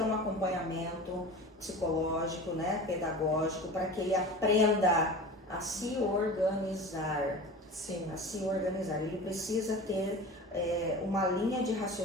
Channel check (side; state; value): both; normal; correlation 0.34